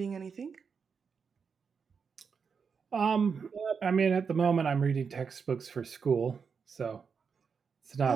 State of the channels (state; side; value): quieter; left; 5.9 dB